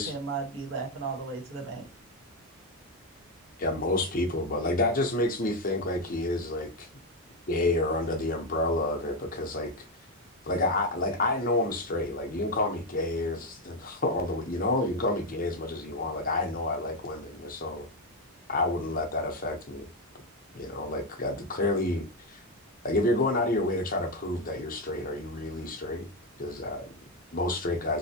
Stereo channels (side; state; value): both; normal; correlation 0.08